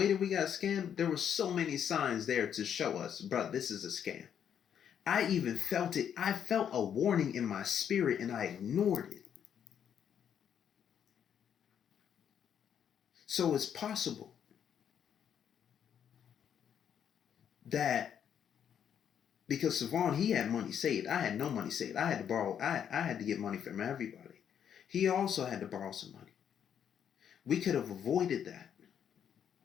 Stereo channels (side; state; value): right; quieter; 8.7 dB